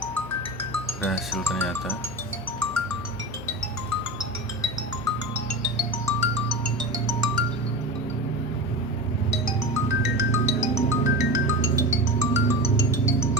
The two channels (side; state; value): left; noise; hum, 18 dB below the sound